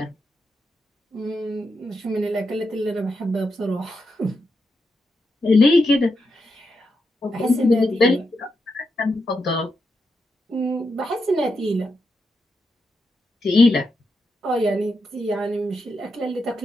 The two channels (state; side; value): normal; both; correlation 0.85